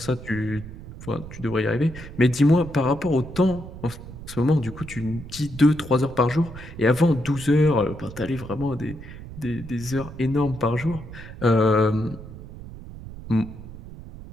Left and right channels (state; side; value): noise; right; rumble, 13 dB below the sound